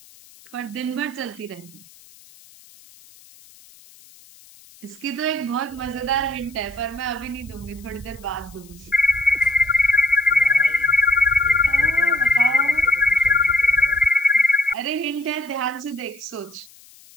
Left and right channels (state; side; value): noise; left; hiss, 25 dB below the sound